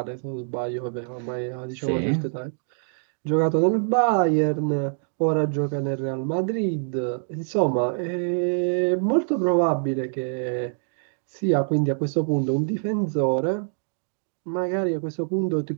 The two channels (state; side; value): silent; left; digital silence